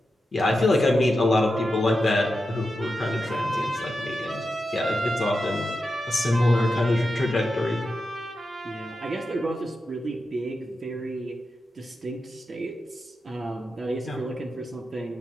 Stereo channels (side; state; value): both; normal; correlation 0.89